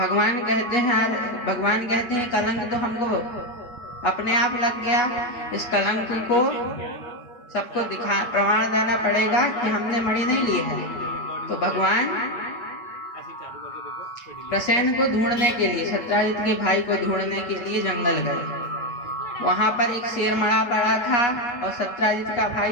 कहते हैं कलंक तो हमको अपने आप लग गया। इस कलंक को सबको प्रमाण देना पड़ेगा कि हमने मणि नहीं ली है। तो भगवान प्रसेन को ढूंढने के लिए, सत्राजित के भाई को ढूंढने के लिए जंगल गए। वहां पर एक शेर मरा पड़ा था और सत्राजित का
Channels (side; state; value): right; late; 8.3 ms